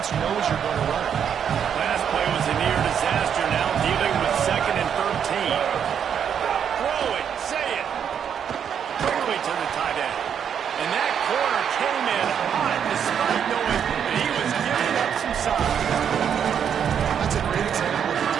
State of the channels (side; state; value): left; quieter; 8.1 dB